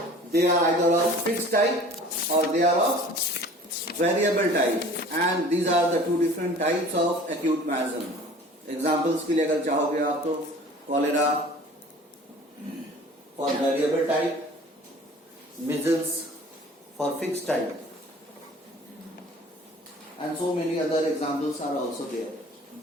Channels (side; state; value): both; normal; correlation 0.46